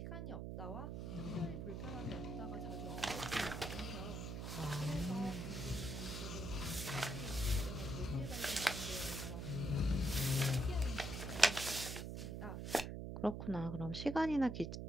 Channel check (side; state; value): right; noise; hum, 5 dB below the sound